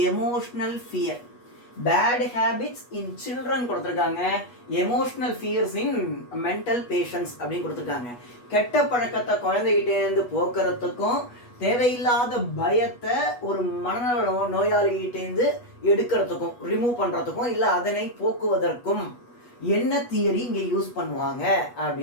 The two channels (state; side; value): late; right; 8.2 ms